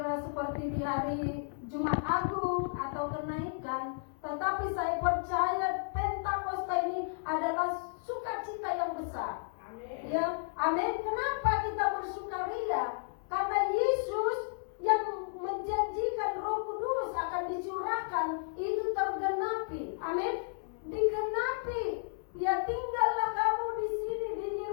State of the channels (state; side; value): silent; right; 56 dB below the other